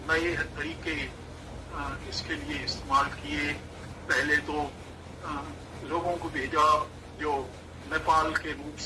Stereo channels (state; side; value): identical; both; correlation 1.00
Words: तरीके इसके लिए इस्तेमाल किए। पहले तो लोगों को भेजा जो नेपाल के रूट